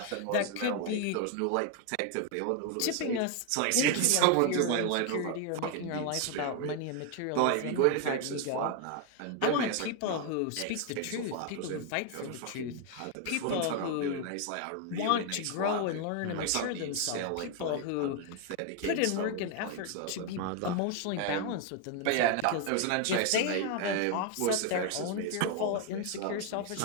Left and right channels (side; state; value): both; different; correlation 0.01